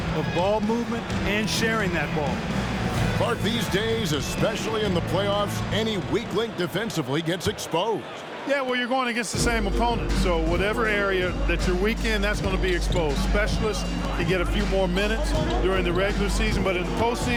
of ball movement and sharing that ball. Clark, these days, especially in the playoffs, any weak link defensively gets exposed. Yeah, well, you're going against the same opponent, so whatever area that you're weak in, that's going to be exposed. Specialists can get a few more minutes during the regular season, but in the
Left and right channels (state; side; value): identical; both; correlation 1.00